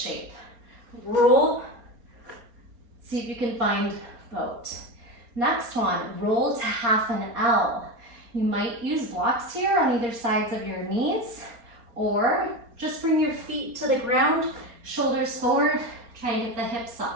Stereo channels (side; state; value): left; late; 4.3 ms